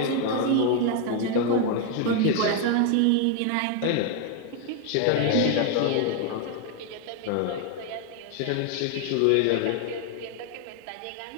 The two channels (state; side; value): different; both; correlation 0.00